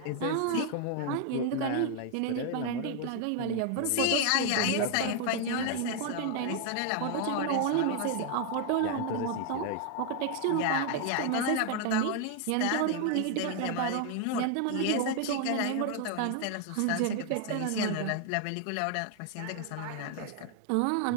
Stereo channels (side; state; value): both; different; correlation 0.00